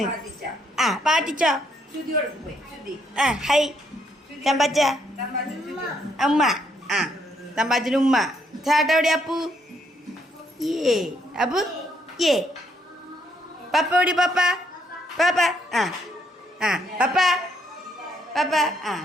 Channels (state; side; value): normal; both; correlation 0.72